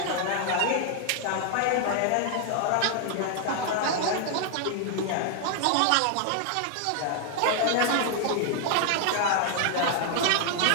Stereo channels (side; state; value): both; different; correlation 0.00